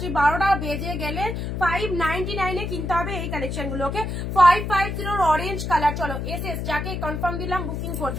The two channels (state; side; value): noise; left; hum, 4 dB below the sound